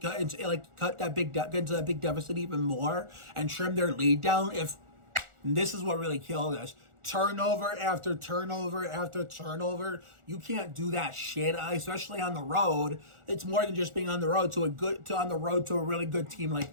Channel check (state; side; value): late; left; 1.4 ms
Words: big deficit even more, and trim their lead down. If this is what really killed us, turnover after turnover after turnover. You can't do that shit, especially on the road. It's more than just being on the road to a really good team